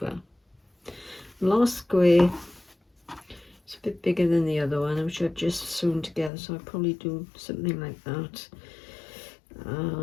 Last square, it's a bit bigger than the other one, which I've just sewn together, so I'll probably do something like that.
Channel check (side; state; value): right; drops out; at 6.3 s